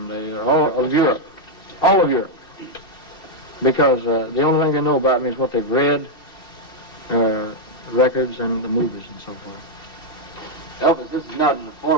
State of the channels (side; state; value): right; late; 2.7 ms